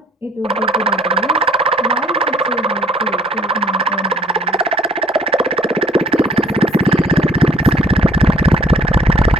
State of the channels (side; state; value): both; normal; correlation 0.59